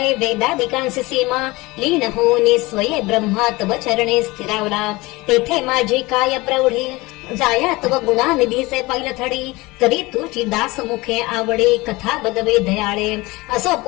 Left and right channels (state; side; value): quieter; right; 22.0 dB